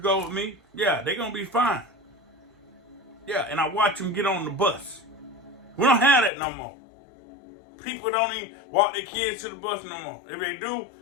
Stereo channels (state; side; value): drops out; right; at 6.3 s